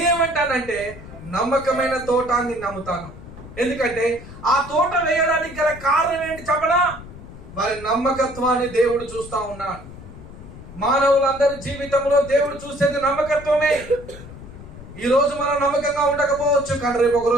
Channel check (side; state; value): left; noise; rumble, 15 dB below the sound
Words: నమ్మకమైన తోట అని నమ్ముతాను. ఎందుకంటే ఆ తోట వేయడానికి గల కారణం ఏంటి చెప్పనా? వారి నమ్మకత్వాన్ని దేవుడు చూస్తా ఉన్నాడు. మానవులందరి జీవితంలో దేవుడు చూసేది నమ్మకత్వమే. ఈ రోజు మనం నమ్మకంగా ఉండకపోవచ్చు, కానీ రేపు ఒక